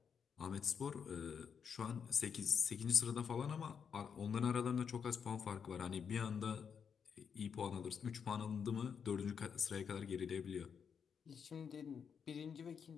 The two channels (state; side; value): quieter; right; 6.9 dB